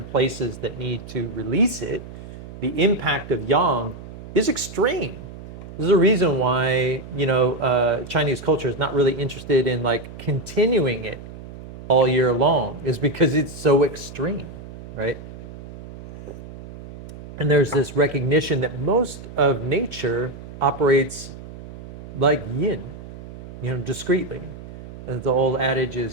places that need to release it. The impact of yang is extreme. There's a reason why, Chinese culture is not really interested in like continuing it all year long, is because it's so extreme, right? And there's this recognition that most of nature operates like yin, discreetly. As the old adage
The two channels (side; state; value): right; noise; hum, 14 dB below the sound